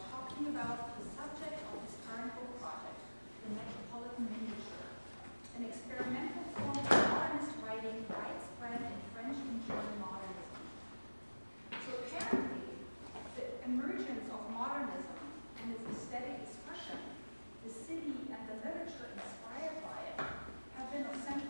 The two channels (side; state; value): both; inverted; correlation -1.00